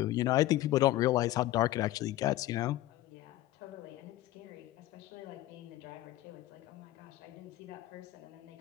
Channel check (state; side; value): quieter; right; 15.5 dB